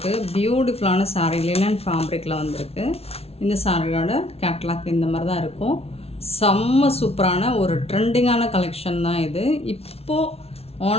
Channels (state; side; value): late; right; 0.30 ms